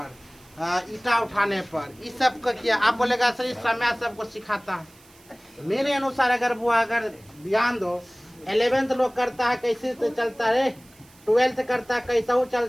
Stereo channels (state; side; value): noise; right; hiss, 27 dB below the sound